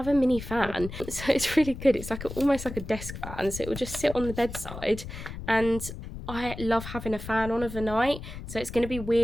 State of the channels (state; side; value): noise; left; rumble, 10 dB below the sound